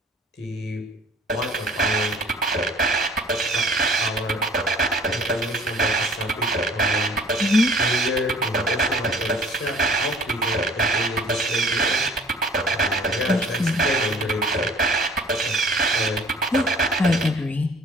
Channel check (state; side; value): normal; both; correlation 0.52